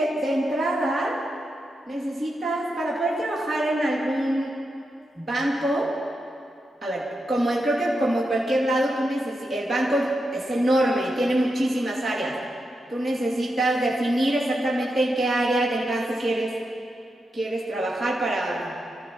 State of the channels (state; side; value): normal; both; correlation 0.86